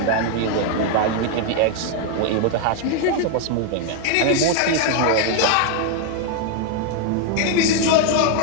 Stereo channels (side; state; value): both; different; correlation 0.01